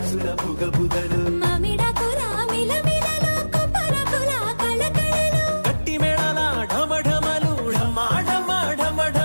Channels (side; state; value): both; inverted; correlation -1.00